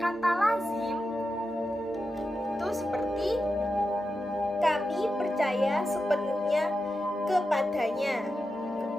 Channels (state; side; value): normal; both; correlation 0.90